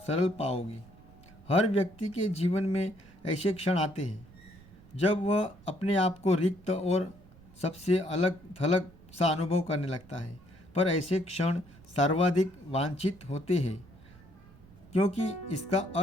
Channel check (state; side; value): noise; right; rumble, 23 dB below the sound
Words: पाओगे। हर व्यक्ति के जीवन में ऐसे क्षण आते हैं जब वह अपने आप को रिक्त और सबसे अलग थलग सा अनुभव करने लगता है। पर ऐसे क्षण सर्वाधिक वांछित होते हैं, क्योंकि इसका